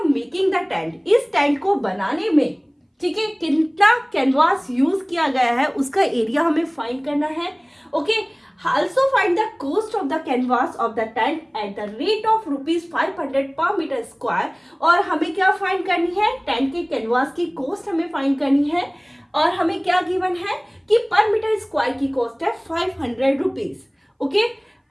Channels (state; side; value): identical; both; correlation 1.00